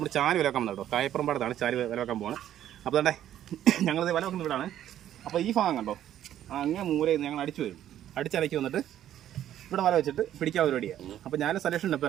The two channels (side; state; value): left; quieter; 11.4 dB